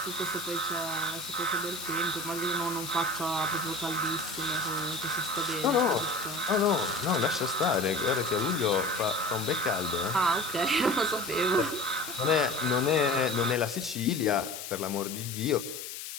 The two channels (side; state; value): left; noise; hiss, 9 dB below the sound